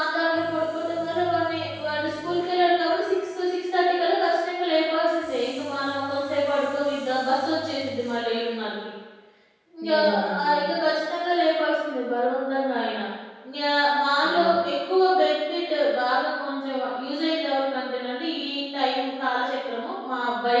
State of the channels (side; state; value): both; identical; correlation 1.00